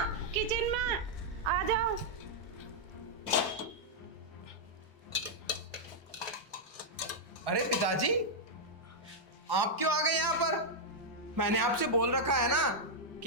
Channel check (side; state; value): both; normal; correlation -0.05